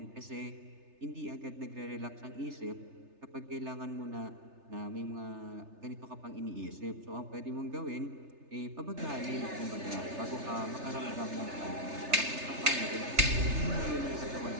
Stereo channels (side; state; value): left; late; 3.3 ms